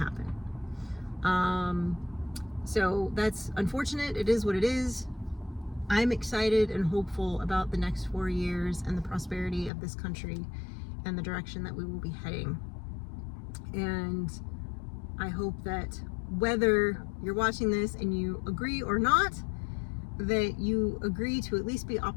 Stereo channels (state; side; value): drops out; right; at 9.7 s